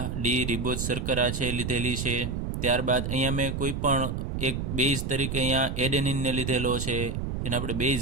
ડી રિબોઝ શર્કરા છે લીધેલી છે. ત્યારબાદ અહીંયા મેં કોઈ પણ એક બેઝ તરીકે અહીંયા એડેનિનને લીધેલો છે, જેને આપણે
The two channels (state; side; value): noise; right; rumble, 3 dB below the sound